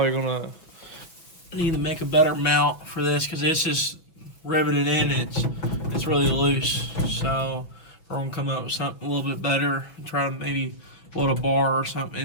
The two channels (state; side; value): late; right; 6.0 ms